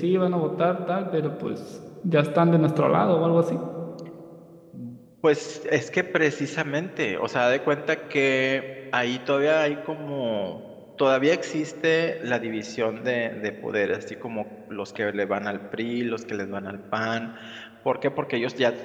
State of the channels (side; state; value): both; identical; correlation 1.00